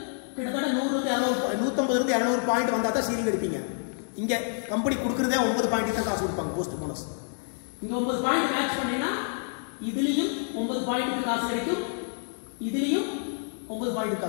கிட்டத்தட்ட 150 இருந்து 200 பாயிண்ட் வந்தா தான் சீலிங் எடுப்பீங்க. இங்க கம்பெனி கொடுக்கறதே 9 பாயிண்ட் தான் காசு கொடுப்பாங்க போஸ்ட் போனஸ். இங்க 9 பாயிண்ட் மேட்ச் பண்ணீங்கன்னா இதுலயும் 9 பாயிண்ட் காசு கிடைக்கும், இதுலயும் 9 பாயிண்ட்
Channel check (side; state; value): right; silent; digital silence